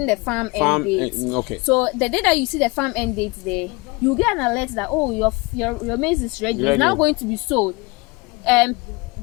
the farm end date. Okay. So the day that you see the farm end date there, you get an alert that your maize is ready. It's now going to be sold.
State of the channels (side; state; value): right; quieter; 25.7 dB